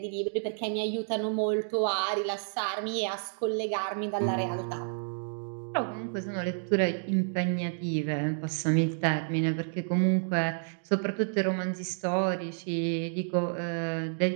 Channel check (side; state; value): left; silent; digital silence